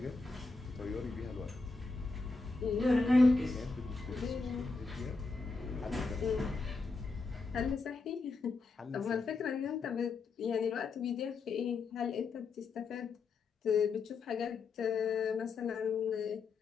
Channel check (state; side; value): quieter; right; 4.0 dB